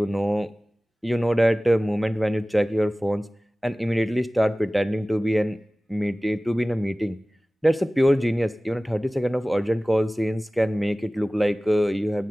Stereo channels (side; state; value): both; normal; correlation 0.98